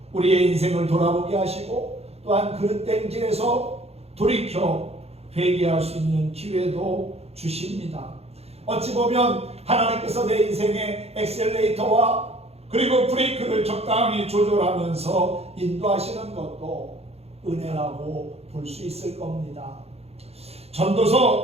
우리의 인생을 돌아보게 하시고 또한 그릇된 길에서 돌이켜 회개할 수 있는 기회도 주십니다. 어찌 보면 하나님께서 내 인생의 엑셀레이터와 그리고 브레이크를 적당히 조절하면서 인도하시는 것도 은혜라고 볼 수 있을 겁니다.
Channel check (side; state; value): left; late; 0.30 ms